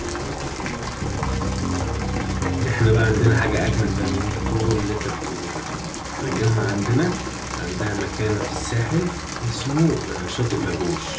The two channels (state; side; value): identical; both; correlation 1.00